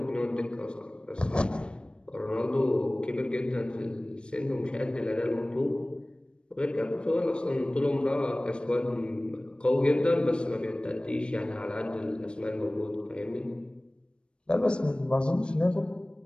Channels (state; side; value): late; right; 0.055 ms